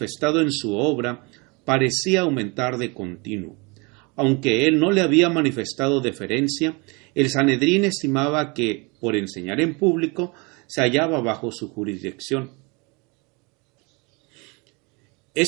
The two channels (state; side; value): quieter; left; 29.0 dB